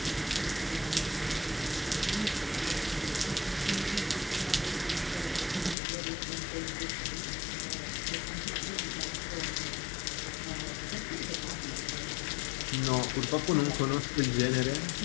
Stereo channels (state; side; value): drops out; right; at 5.8 s